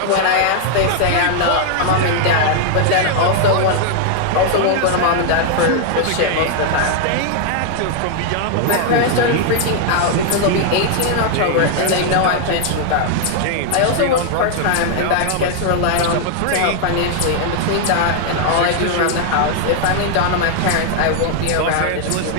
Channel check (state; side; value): different; both; correlation 0.00